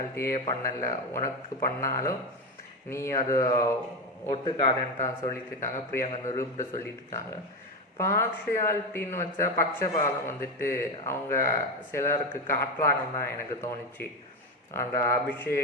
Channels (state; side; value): normal; both; correlation 0.15